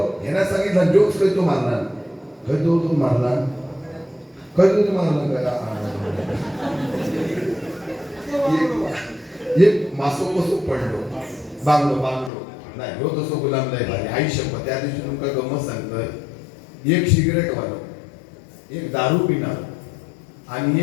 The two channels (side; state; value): right; drops out; at 12.3 s